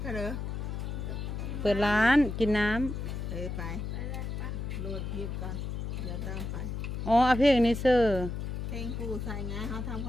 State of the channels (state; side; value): noise; left; hum, 4 dB below the sound